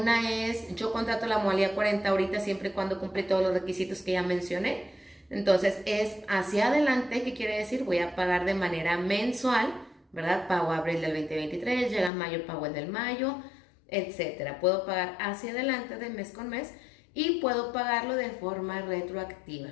es, yo contrato la modalidad 40 ahorita siempre y cuando cumple todos los requisitos que ya mencioné. Entonces es hacia adelante, ¿qué quiere decir? Voy a pagar de manera mensual, ¿verdad? Pago abril del 2023, llega mayo, pago el del mayo, etcétera. Puedo pagar hacia adelante de mes con mes y puedo pagarlo de forma retroactiva.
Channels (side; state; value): right; drops out; at 12.1 s